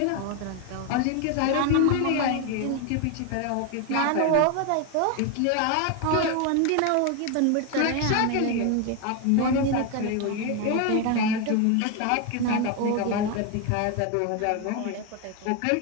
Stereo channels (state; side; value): different; both; correlation 0.01